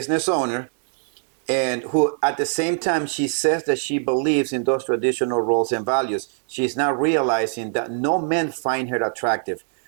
owner, and who at the same time she says that she believes in those traditional roles and values. She's not realizing that no men find her attractive.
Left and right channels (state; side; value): silent; left; digital silence